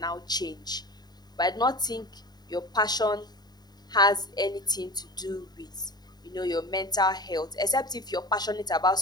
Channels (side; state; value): right; late; 0.20 ms